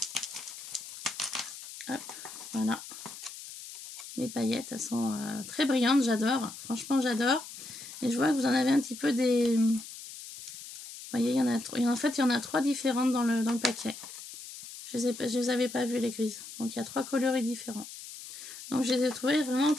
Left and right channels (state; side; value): noise; left; hiss, 13 dB below the sound